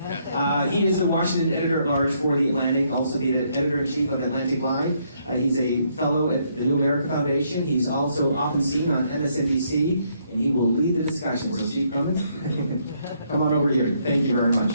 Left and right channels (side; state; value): both; inverted; correlation -0.72